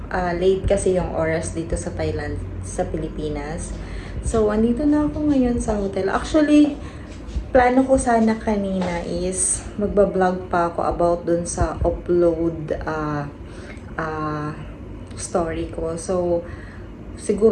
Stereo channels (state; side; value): identical; both; correlation 1.00